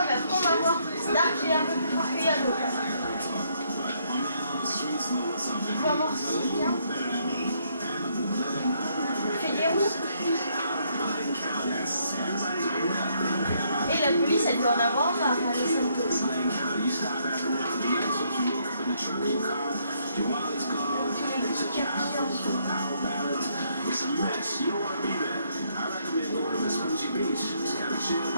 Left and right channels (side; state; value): both; inverted; correlation -0.71